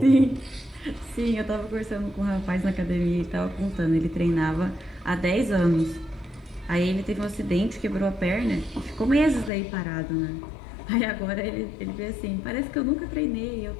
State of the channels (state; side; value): drops out; right; at 9.5 s